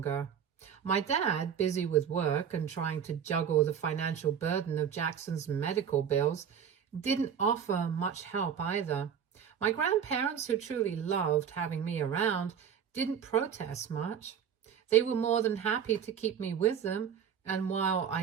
My dad, busy with work and trying to juggle the financial burden of Jackson's medical bills, didn't offer much help either. My grandparents, who truly loved having me around, didn't protest much. They were more than happy to keep me with them, and while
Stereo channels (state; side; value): quieter; left; 8.1 dB